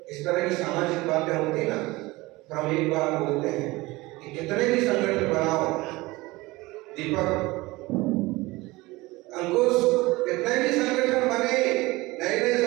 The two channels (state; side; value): quieter; left; 21.1 dB